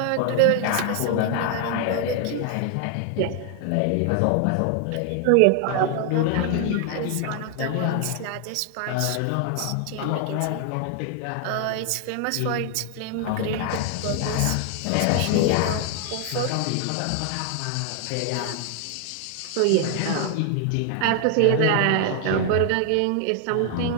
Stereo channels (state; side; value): different; both; correlation 0.00